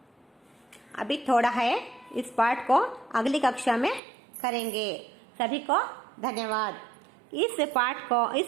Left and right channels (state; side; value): drops out; left; at 4.0 s